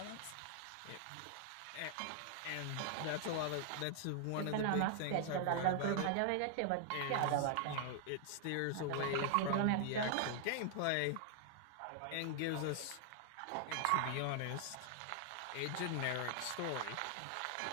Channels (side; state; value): both; different; correlation 0.00